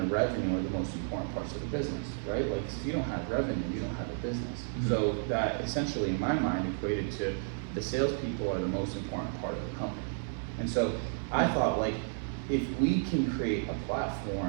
revenue are the most important parts of the business, right? Like if you don't have revenue, you don't have a business. So that essentially in my mind equated to the salespeople are the most important part of the company. And so I thought, like, if we can create a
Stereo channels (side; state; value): left; silent; 56 dB below the other